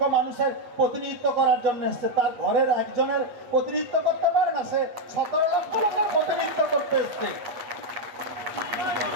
মানুষের প্রতিনিধিত্ব করার জন্য এসছে। তার ঘরের একজনের প্রতিনিধিত্ব করতে পারে না, সে 17 লক্ষ লোকের প্রতিনিধিত্ব করতে এসছে।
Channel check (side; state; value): left; late; 8.3 ms